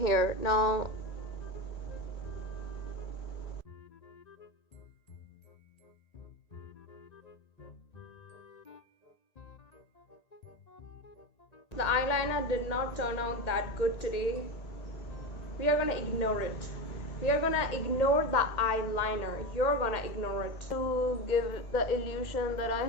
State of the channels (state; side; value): late; right; 1.8 ms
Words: Now the eyeliner did not turn out that good today. We are gonna ignore it. We are gonna ignore the eyeliner. You're gonna ignore it to give the illusion that I